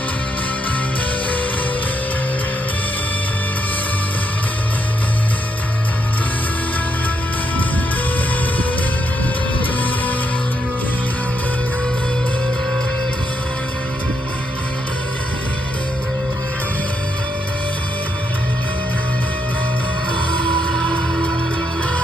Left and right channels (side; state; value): both; normal; correlation 0.79